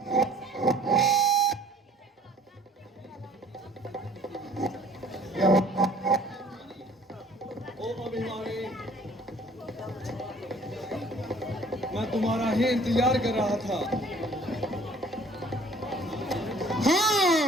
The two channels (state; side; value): normal; both; correlation 0.54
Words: ओ अभिमानी, मैं तुम्हारा ही इंतजार कर रहा था। हाँ,